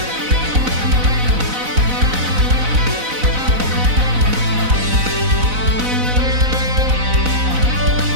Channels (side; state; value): left; late; 4.0 ms